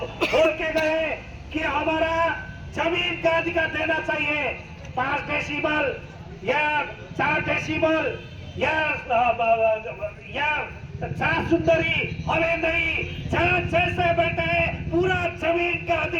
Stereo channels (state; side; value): identical; both; correlation 1.00